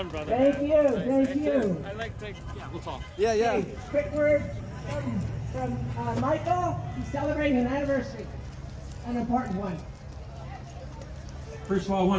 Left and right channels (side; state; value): both; identical; correlation 1.00